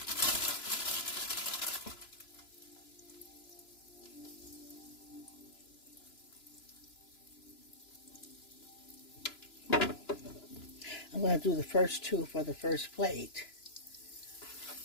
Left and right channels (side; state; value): right; late; 3.0 ms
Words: I'm going to do the first two for the first plate.